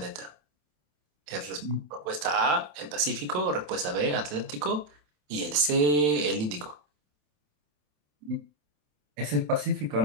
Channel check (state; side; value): late; left; 27 ms